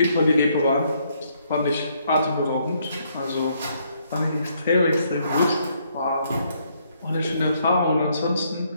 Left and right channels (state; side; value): inverted; both; correlation -0.71